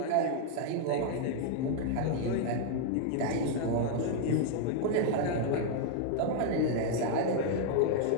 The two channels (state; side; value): different; both; correlation -0.01